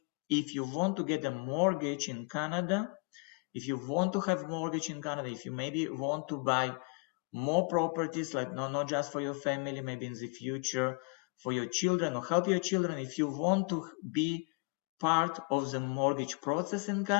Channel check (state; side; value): quieter; right; 33.0 dB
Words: If you want to get a mortgage in Canada, if you want to have mortgage in Canada, if you maybe want to buy more properties, like not just for your family, maybe in the future for your children or help your children, if you want to be part of the mortgage process in